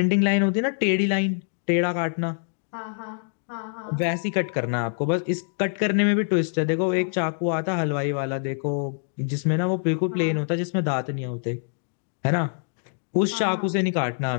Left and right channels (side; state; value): right; silent; digital silence